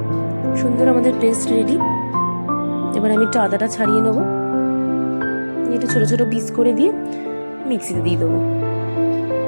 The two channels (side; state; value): both; inverted; correlation -1.00